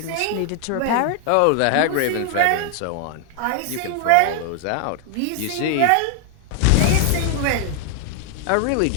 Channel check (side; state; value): both; different; correlation 0.00